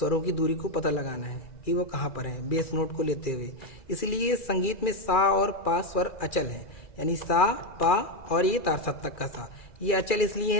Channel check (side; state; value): right; late; 2.4 ms